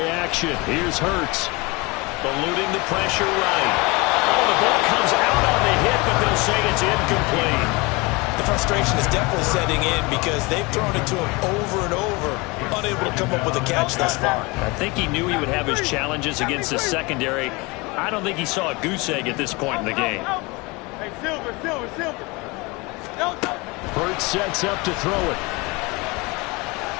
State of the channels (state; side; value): quieter; right; 25.6 dB